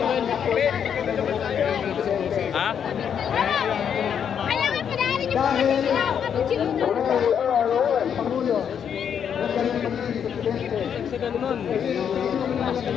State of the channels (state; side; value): quieter; right; 8.1 dB